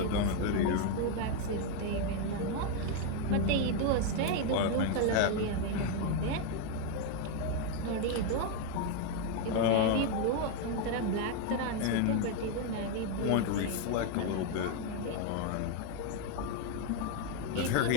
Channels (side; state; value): both; different; correlation 0.01